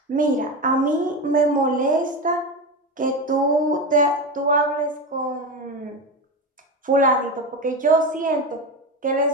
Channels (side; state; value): both; normal; correlation 0.20